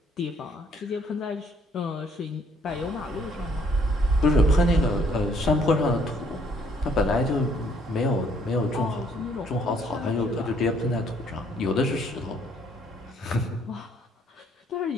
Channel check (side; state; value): both; normal; correlation 0.65